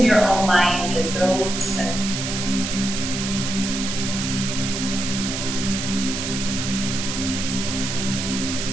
your own mind as though it's finished.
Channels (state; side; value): noise; right; hiss, 4 dB below the sound